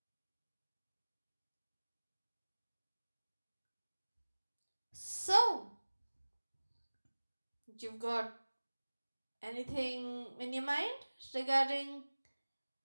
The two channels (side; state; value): both; inverted; correlation -1.00